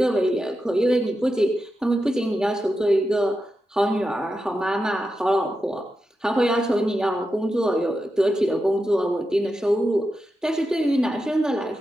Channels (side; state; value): both; normal; correlation 0.89